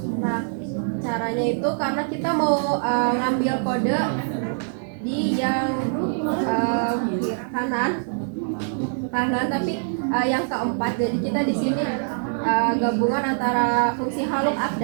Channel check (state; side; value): silent; left; digital silence